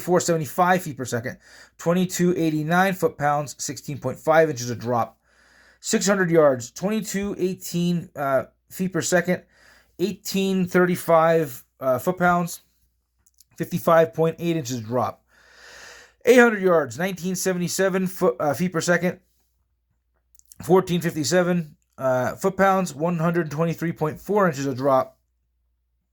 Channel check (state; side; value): identical; both; correlation 1.00